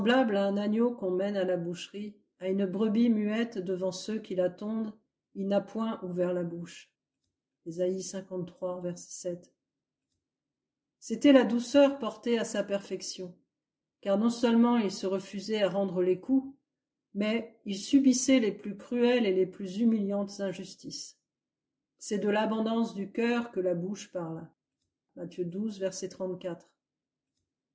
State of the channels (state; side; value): identical; both; correlation 1.00